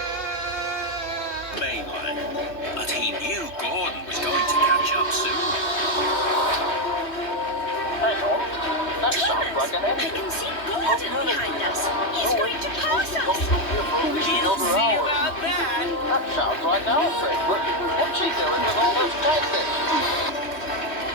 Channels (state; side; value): late; right; 3.1 ms